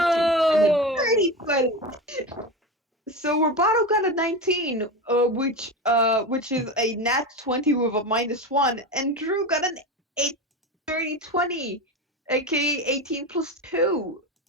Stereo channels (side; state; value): both; normal; correlation 0.22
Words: Whoa! dirty 20. So Roboto got a 19, which is a nat 20 with a -1, and Drew got an 8 30 20, aka 18 plus 2.